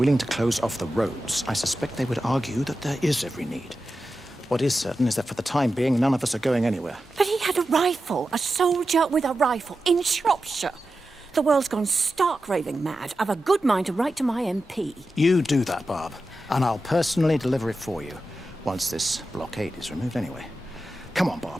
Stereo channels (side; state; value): both; normal; correlation 0.92